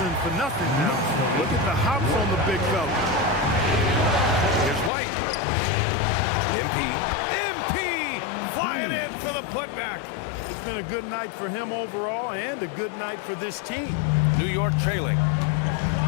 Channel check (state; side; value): drops out; right; at 4.9 s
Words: for nothing now. Look at the hops on the big fella. Here's White. MP flying in for the putback. It's been a good night for him overall and a good night for this team. New York trailing.